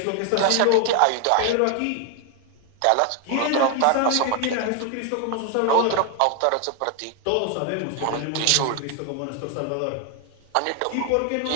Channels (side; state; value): both; different; correlation 0.00